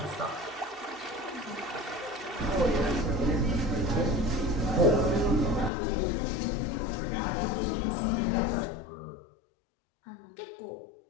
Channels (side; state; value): right; drops out; at 5.7 s